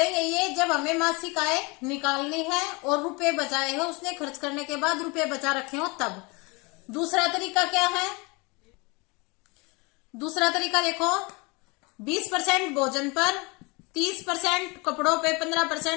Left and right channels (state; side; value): quieter; right; 27.7 dB